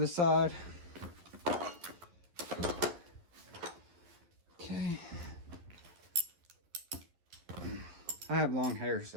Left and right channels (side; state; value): left; late; 12 ms